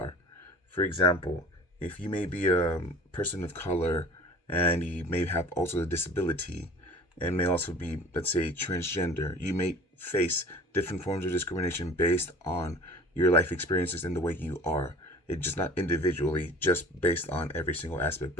For example, if you may be a person of color and you may have also a disability and may also be, let's say, transgender, you may face different forms of discrimination based on your life experiences and the way you are. It's just not individually, just based on every single aspect,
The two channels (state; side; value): normal; both; correlation 0.44